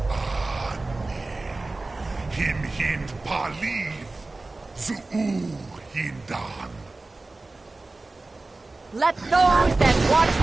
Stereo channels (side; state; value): left; quieter; 3.2 dB